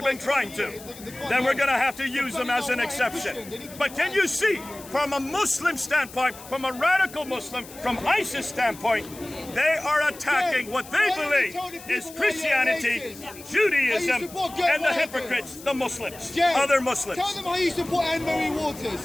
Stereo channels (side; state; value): left; noise; hiss, 17 dB below the sound